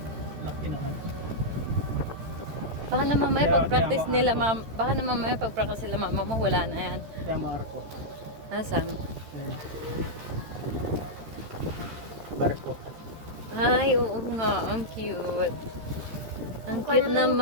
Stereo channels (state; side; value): late; left; 13 ms